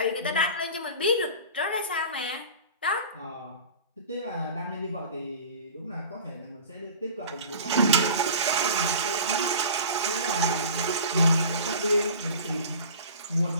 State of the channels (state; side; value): inverted; both; correlation -0.38